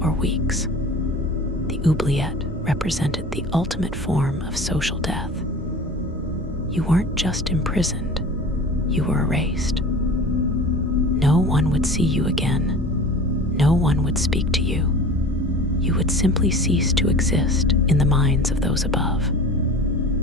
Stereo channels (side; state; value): both; normal; correlation 0.38